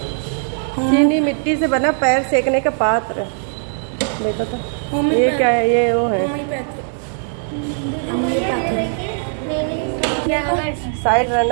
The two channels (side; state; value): left; silent; digital silence